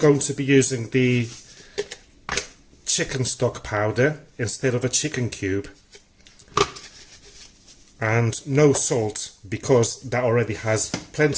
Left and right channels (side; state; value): both; identical; correlation 1.00